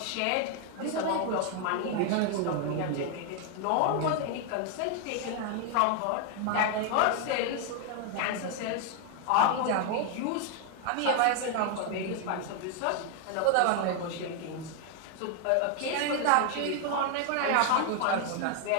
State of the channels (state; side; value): different; both; correlation 0.00